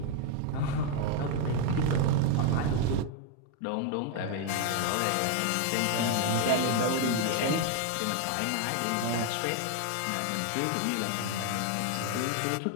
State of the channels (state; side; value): different; both; correlation 0.01